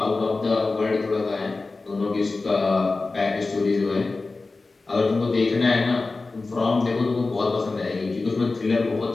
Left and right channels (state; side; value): quieter; right; 3.6 dB